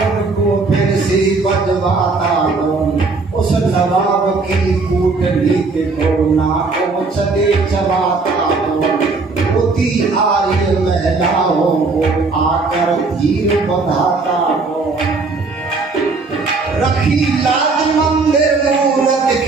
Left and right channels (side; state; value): left; quieter; 4.0 dB